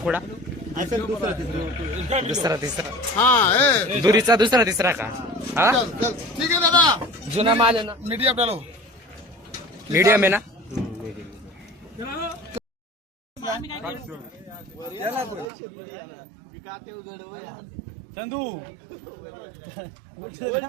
खुडा? दुसरा तिसरा. हां ए दुरीचा दुसरा तिसरा का? हा, चल चल ठीक आहे दादा. जुना माल आहे ना, मीडियम डालो. मीडियम आहे ना. चंदू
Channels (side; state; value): left; drops out; at 15.5 s